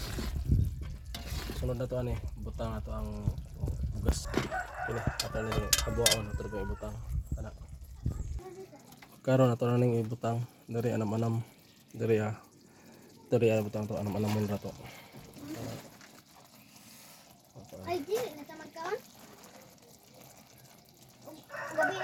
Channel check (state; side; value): identical; both; correlation 1.00